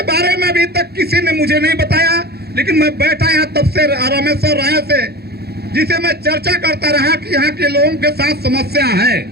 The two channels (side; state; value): left; late; 0.47 ms